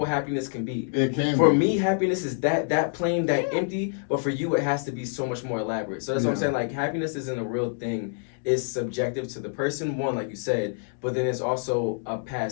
happiness can be. It can For be. me, happiness is that plain, that empty. But for you, it has to be so much more elaborate. So that's what I'm Yeah. saying. Like happiness isn't a real thing. It's subjective to the person. One, like you said, but then it's also a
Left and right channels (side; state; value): right; silent; digital silence